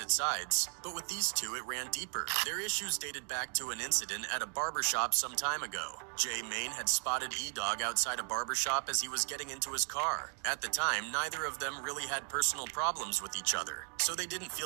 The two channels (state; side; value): quieter; left; 39.8 dB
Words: sides. But with these two, it ran deeper. Their issues dated back to an incident at a barbershop some time ago. Jaymane had spotted E-Dog outside a barbershop as he was getting into his car. At the time, neither of them really had personal problems with each other, so they didn't